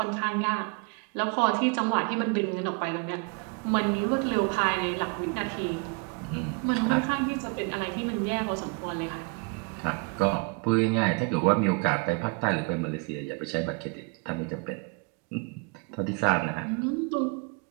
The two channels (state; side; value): quieter; left; 31.1 dB